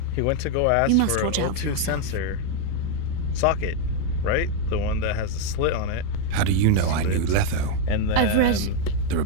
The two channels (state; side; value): different; both; correlation 0.01